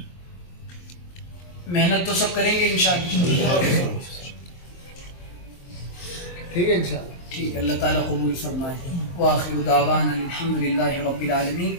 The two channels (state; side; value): late; right; 23 ms